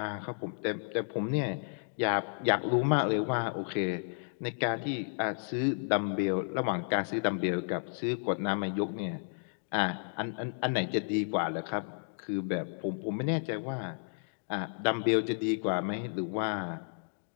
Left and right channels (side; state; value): right; silent; digital silence